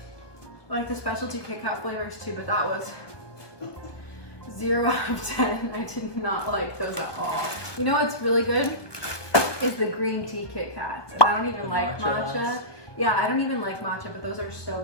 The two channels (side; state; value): right; late; 1.2 ms